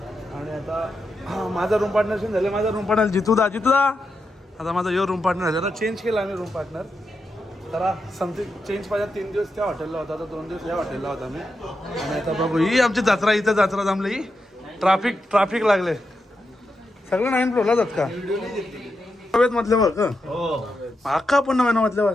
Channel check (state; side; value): normal; both; correlation 0.86